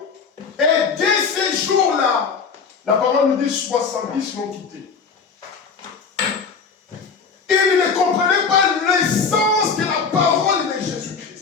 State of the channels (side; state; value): right; quieter; 5.5 dB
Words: Et dès ces jours-là, la parole nous dit 70 l'ont quitté. Ils ne comprenaient pas l'essence de la parole de